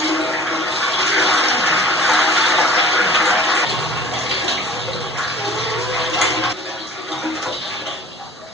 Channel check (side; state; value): both; normal; correlation 0.46